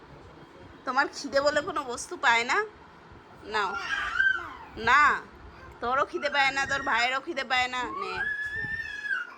তোমার খিদে বলে কোনো বস্তু পায় না? নাও না, তোরও খিদে পায় না, তোর ভাইয়েরও খিদে পায় না। নে,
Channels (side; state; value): both; identical; correlation 1.00